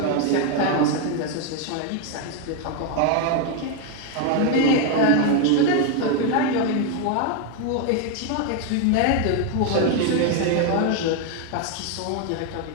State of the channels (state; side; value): different; both; correlation 0.01